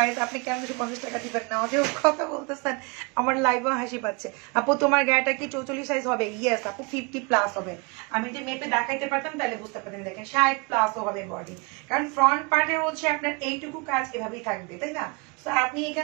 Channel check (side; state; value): left; quieter; 30.0 dB